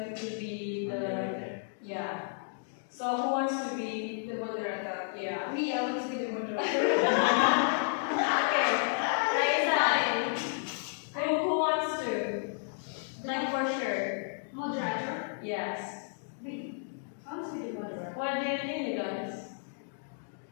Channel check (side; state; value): right; silent; digital silence